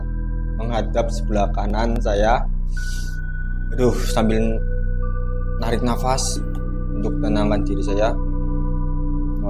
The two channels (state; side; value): identical; both; correlation 1.00